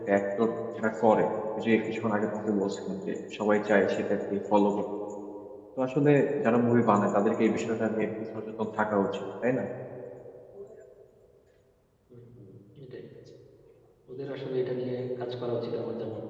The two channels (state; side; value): identical; both; correlation 1.00